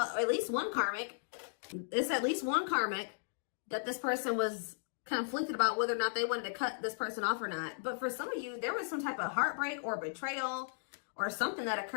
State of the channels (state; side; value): silent; right; digital silence